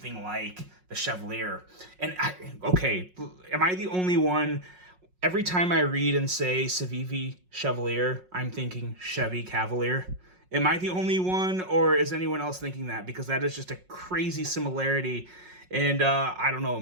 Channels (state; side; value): late; left; 5.5 ms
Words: like the Chevalier. And okay, am I the only one? Every time I read and say Civivi Chevalier, I'm thinking Chevy Cavalier. Am I the only one, or is anyone else thinking that? Because that is just a crazy similarity. And I don't know,